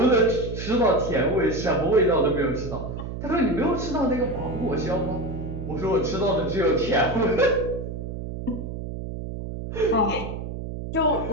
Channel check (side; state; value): right; noise; hum, 7 dB below the sound